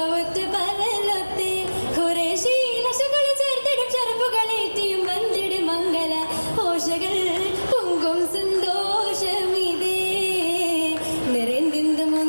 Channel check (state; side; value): inverted; both; correlation -1.00